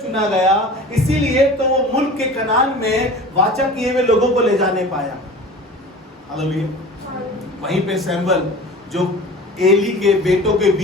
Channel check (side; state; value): both; normal; correlation 0.39